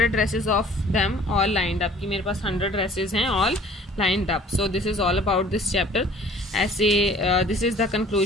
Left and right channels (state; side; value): normal; both; correlation 0.52